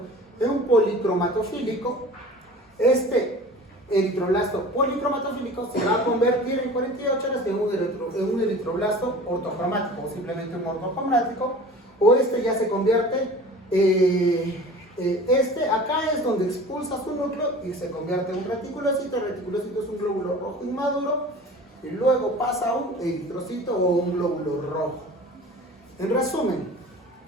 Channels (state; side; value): normal; both; correlation 0.41